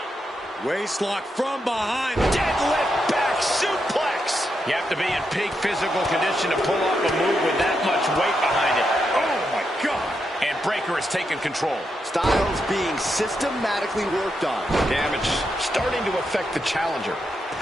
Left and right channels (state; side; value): normal; both; correlation 0.84